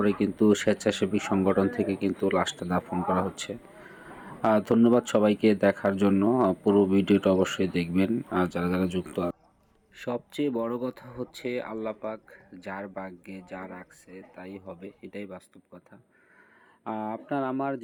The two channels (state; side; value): identical; both; correlation 1.00